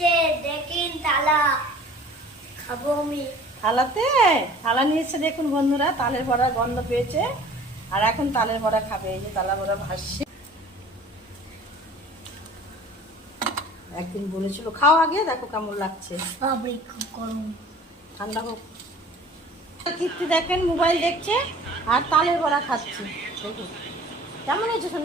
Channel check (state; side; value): normal; both; correlation 0.47